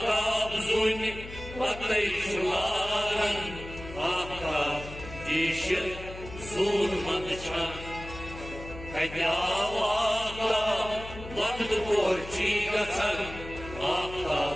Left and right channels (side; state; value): left; noise; hum, 13 dB below the sound